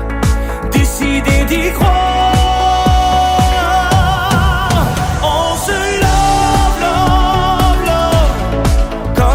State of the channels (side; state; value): both; identical; correlation 1.00